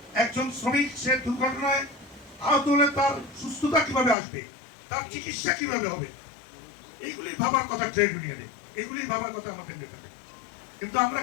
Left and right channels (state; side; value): drops out; right; at 4.2 s